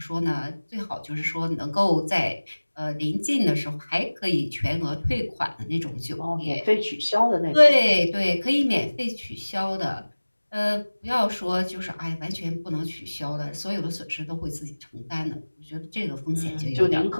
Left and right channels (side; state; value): both; inverted; correlation -1.00